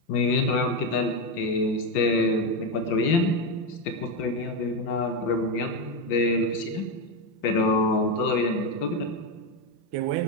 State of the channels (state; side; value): late; right; 5.8 ms